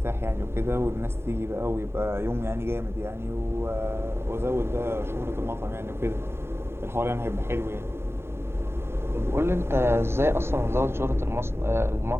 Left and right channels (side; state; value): left; late; 0.12 ms